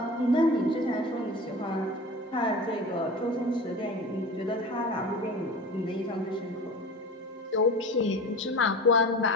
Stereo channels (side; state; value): both; normal; correlation 0.34